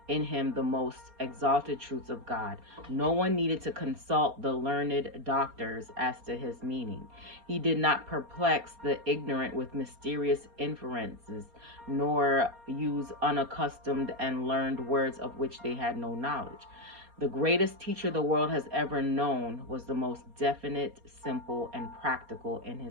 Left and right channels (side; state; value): left; late; 4.3 ms